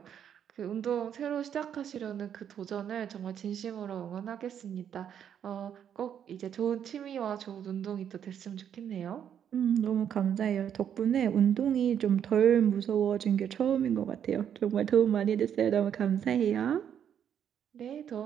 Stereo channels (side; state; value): left; quieter; 8.9 dB